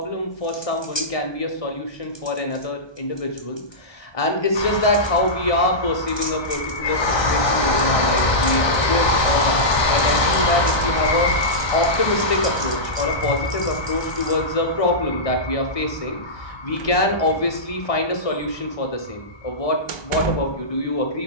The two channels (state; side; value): late; right; 1.2 ms